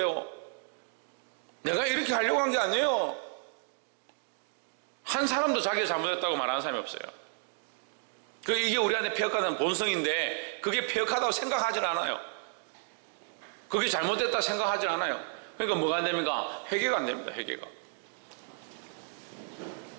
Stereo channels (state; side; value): silent; left; 56 dB below the other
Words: 내가 이렇게 하려고 한 게 아니에요. 한 사람도 자기가 잘못했다고 말하는 사람이 없어요. 이게 우리 안에 폐역하는 본성인데, 그게 폐역하다고 생각하질 않아요. 그게 잘못됐다 생각하질 않아요. 그러니까 뭐가 안 됩니까? 회개가 안 됩니다. 회개가.